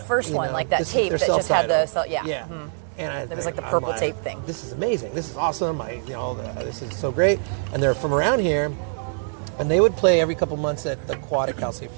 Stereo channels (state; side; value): silent; left; digital silence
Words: first one, like that tape that just had the yeah. Mm-hmm. And it was like the purple tape thing. This is amazing. This is awesome. This is so great. And they're from around here. And they would play every couple months at the Quad at Cal State